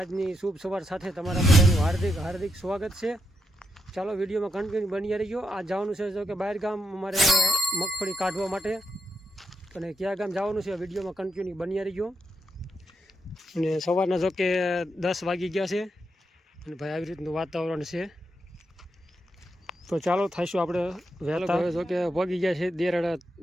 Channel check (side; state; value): both; normal; correlation 0.83